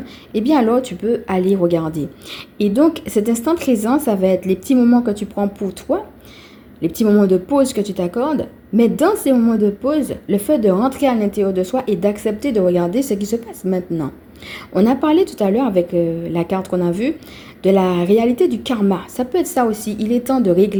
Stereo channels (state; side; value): identical; both; correlation 1.00